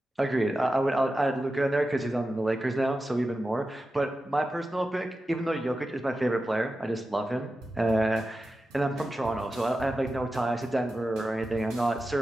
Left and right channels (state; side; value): normal; both; correlation 0.92